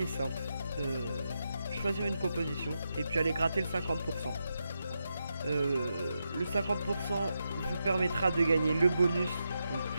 simple. Choisir une composition et puis aller gratter le 50%. Le 50% vous permettra de gagner le bonus. Donc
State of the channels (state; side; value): inverted; both; correlation -0.86